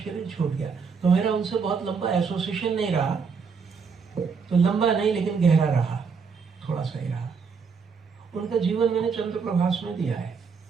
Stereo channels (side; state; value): left; quieter; 5.5 dB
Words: शरीर छूट गया। तो मेरा उनसे बहुत लंबा एसोसिएशन नहीं रहा, तो लंबा नहीं लेकिन गहरा रहा, थोड़ा सा ही रहा। उनका जीवन मैंने चंद्र प्रभास में दिया है,